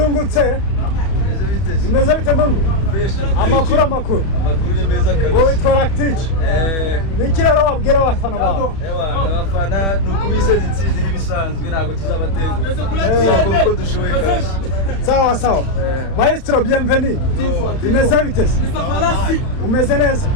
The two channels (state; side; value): late; right; 31 ms